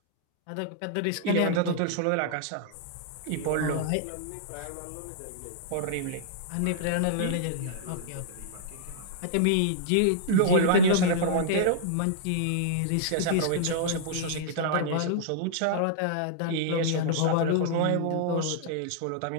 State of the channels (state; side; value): different; both; correlation -0.02